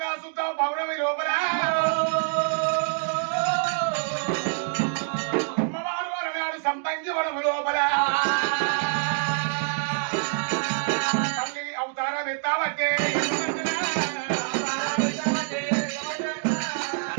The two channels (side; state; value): left; silent; 60 dB below the other